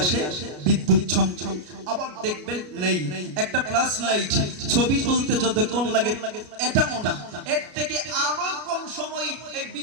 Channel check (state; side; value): late; left; 33 ms